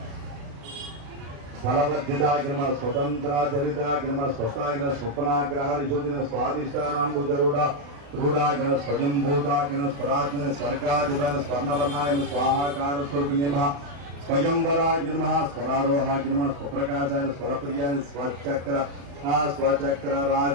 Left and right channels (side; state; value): left; late; 36 ms